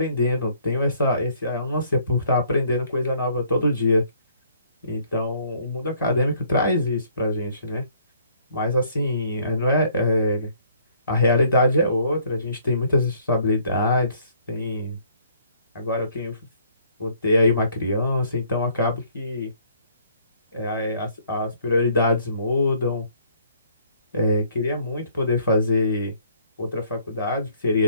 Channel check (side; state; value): both; inverted; correlation -0.62